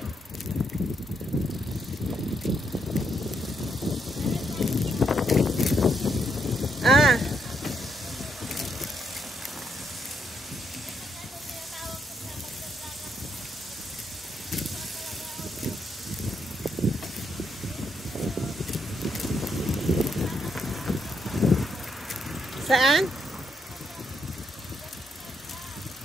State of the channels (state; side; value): normal; both; correlation 0.77